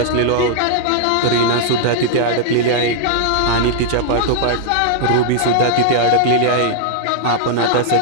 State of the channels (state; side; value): different; both; correlation -0.01